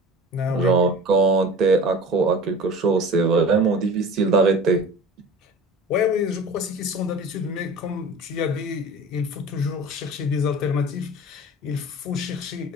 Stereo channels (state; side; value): normal; both; correlation 0.38